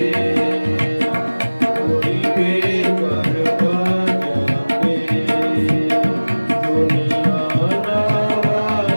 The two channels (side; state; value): both; inverted; correlation -1.00